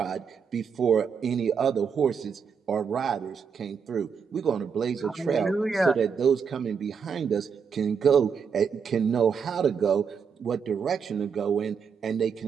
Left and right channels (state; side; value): quieter; left; 6.4 dB